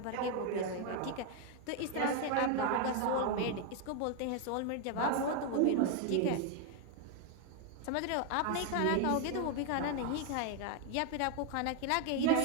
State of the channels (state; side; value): different; both; correlation 0.01